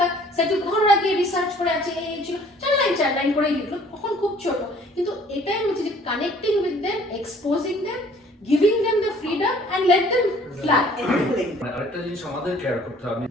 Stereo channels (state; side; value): normal; both; correlation 0.55